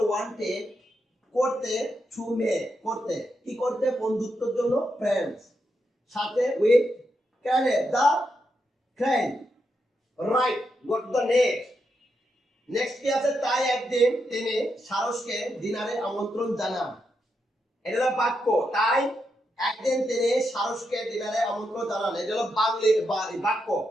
ওয়ান্টেড করতে টু মেক করতে, কি করতে বন্ধুত্বের জন্য ফ্রেন্ডস সাথে উইথ ট্রেনে, the train, right. Go to the next, next কি আছে তাই একদিন তিনি সারসকে ডিনারে আমন্ত্রণ জানান, এটা হলো বাক্য, তাই একদিন তিনি সারসকে ডিনারে আমন্ত্রণ জানান, এটা হলো বাংলিশ বাক্য।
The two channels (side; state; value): both; normal; correlation 0.83